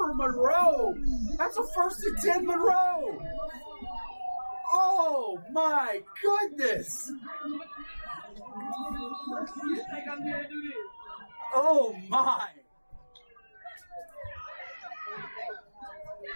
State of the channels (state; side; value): inverted; both; correlation -1.00